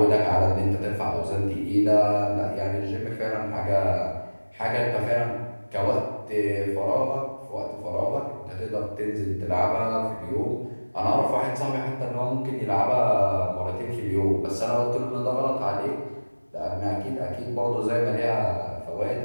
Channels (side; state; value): both; inverted; correlation -1.00